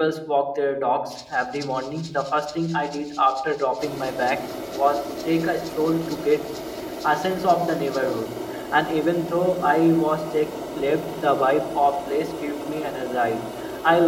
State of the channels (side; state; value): both; identical; correlation 1.00